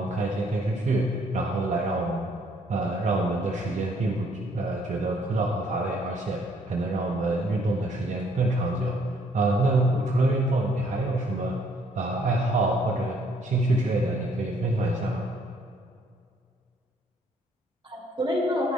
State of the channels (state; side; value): normal; both; correlation 0.65